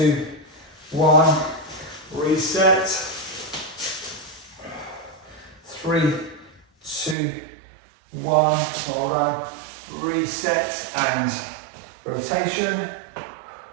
1. Reset. 3, 2, 1. Hold on. Reset and rotation.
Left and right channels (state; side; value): drops out; left; at 7.2 s